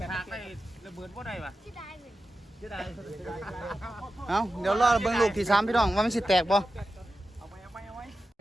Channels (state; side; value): normal; both; correlation 0.92